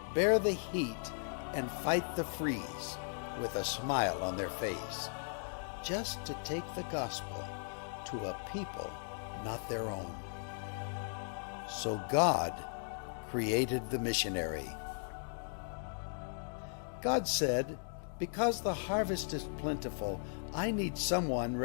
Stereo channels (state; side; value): silent; right; digital silence